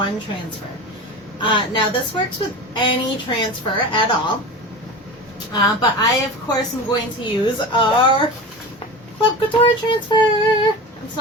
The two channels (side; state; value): both; normal; correlation 0.30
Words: transfer. Now this works with any transfer at all, but I of course am going to use our Club Couture transfer. I'm